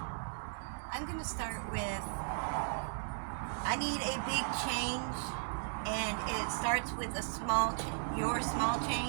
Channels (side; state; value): left; silent; digital silence